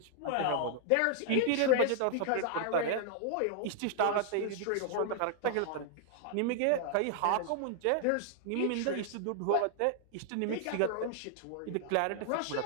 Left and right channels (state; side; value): different; both; correlation -0.01